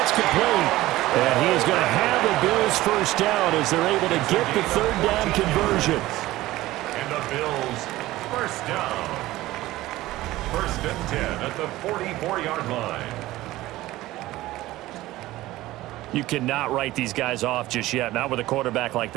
complete. And he is going to have the Bills 1st down as they're able to get the 3rd down conversion. And the Bills 1st down. 1st and 10 at the 44-yard line. You cannot write these guys off just yet. Not with a quarterback like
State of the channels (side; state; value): left; quieter; 16.9 dB